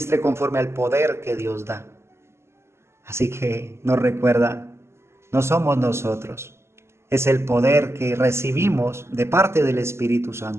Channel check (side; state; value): left; late; 0.13 ms